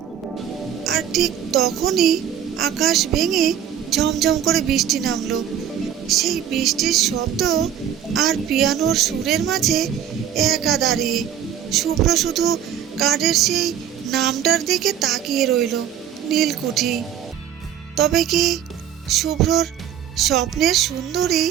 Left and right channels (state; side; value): quieter; left; 9.4 dB